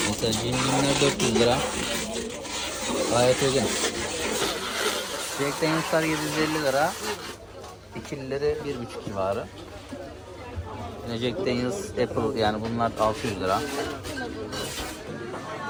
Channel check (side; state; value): both; identical; correlation 1.00